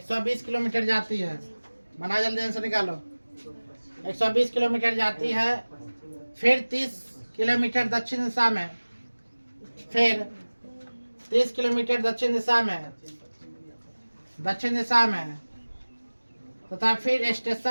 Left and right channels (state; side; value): inverted; both; correlation -1.00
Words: किलोमीटर जाती है। बना जल्दी आंसर निकालो। 120 किलोमीटर जाती है। फिर 30 किलोमीटर दक्षिण दिशा में। फिर 30 किलोमीटर दक्षिण दिशा में तथा फिर